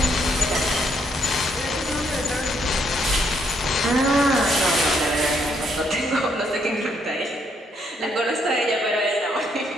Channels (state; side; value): normal; both; correlation 0.72